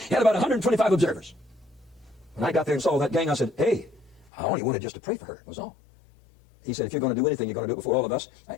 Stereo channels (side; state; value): right; drops out; at 4.3 s